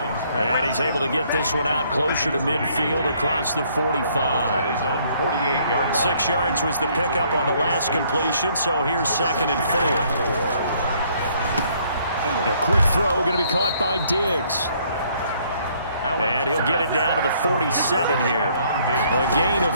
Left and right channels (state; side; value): inverted; both; correlation -0.65